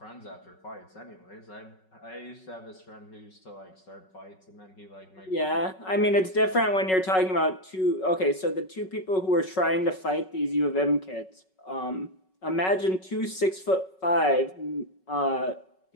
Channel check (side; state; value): right; late; 5.4 ms